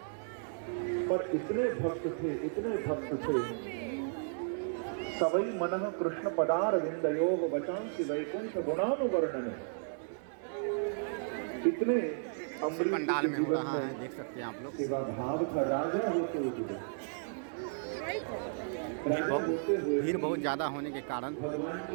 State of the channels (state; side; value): silent; left; 55 dB below the other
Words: पर इतने भक्त थे, इतने भक्त थे। सवई मनः कृष्ण पदार विंदयोः वचांसि वैकुंठ गुणानुवर्णन। इतने अम्बरीश पंडाल में हो रहा है, देख सकते हैं आप लोग। सेवा भाव था, राजा होते हुए भीड़ बहुत ज़्यादा होने के कारण